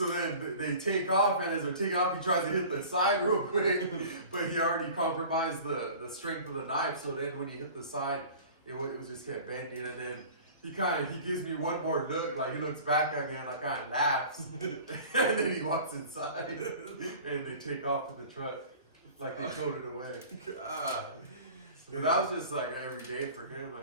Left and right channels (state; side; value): inverted; both; correlation -0.42